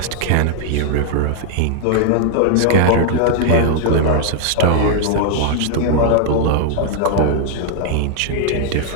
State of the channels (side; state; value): both; different; correlation 0.00